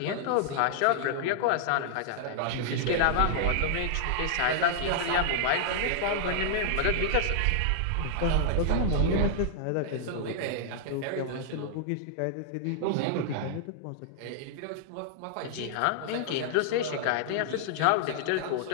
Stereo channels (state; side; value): different; both; correlation -0.01